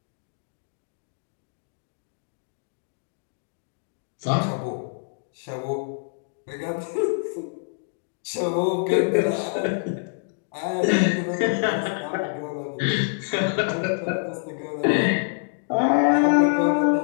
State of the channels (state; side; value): silent; right; digital silence